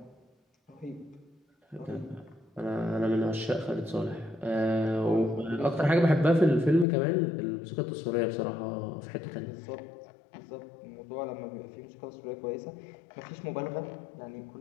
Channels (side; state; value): right; drops out; at 6.9 s